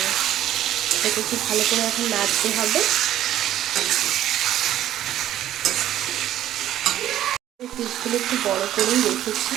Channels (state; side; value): quieter; left; 12.4 dB